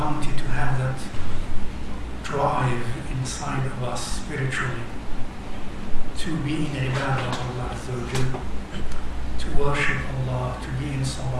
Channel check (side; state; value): both; identical; correlation 1.00